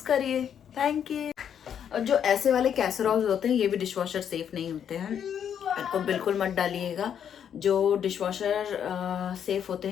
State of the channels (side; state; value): right; quieter; 8.6 dB